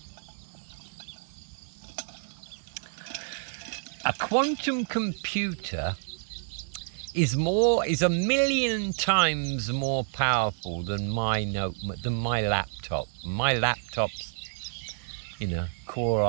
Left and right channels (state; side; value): silent; left; 59 dB below the other